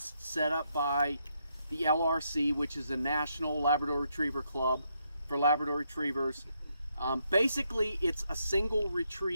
set up by the LRC, which is the National Labrador Retriever Club for Labrador Retrievers. Basically, it's a single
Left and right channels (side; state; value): both; inverted; correlation -0.78